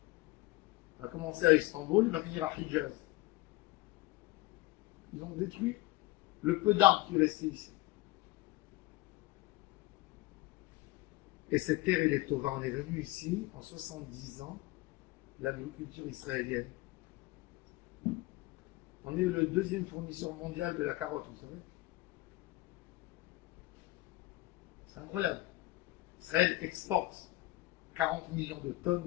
Il va commencer à Istanbul, il va finir à Hijaz. Ils ont détruit le peu d'arbres qui restaient ici. Et cette terre, elle est tova. On est venu ici en 70 ans, l'agriculture israélienne. On est le deuxième fournisseur mondial de la carotte, vous savez. C'est incroyable. Israël exporte 40 millions de tonnes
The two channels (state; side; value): quieter; right; 19.8 dB